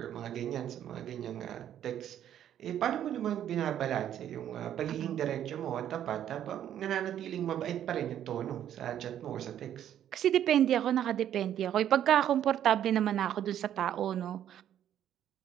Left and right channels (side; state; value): left; quieter; 10.6 dB